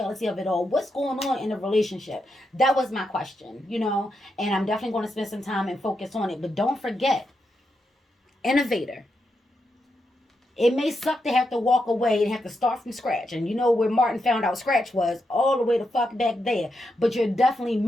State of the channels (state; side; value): normal; both; correlation 0.84